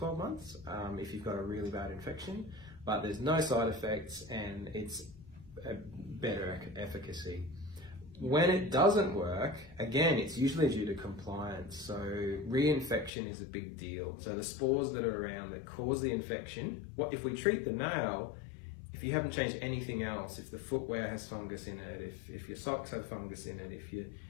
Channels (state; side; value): drops out; right; at 13.1 s